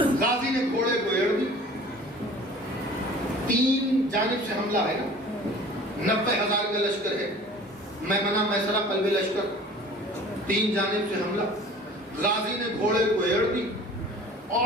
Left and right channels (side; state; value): both; normal; correlation 0.45